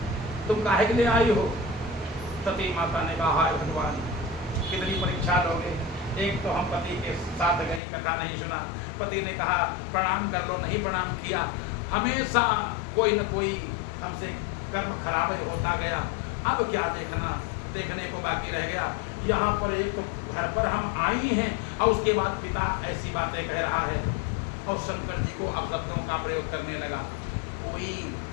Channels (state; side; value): drops out; right; at 7.8 s